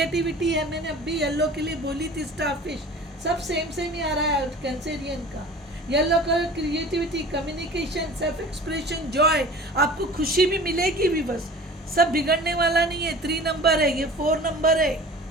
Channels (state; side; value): normal; both; correlation 0.41